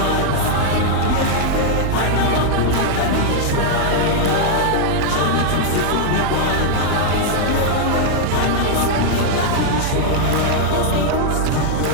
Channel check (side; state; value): both; different; correlation 0.00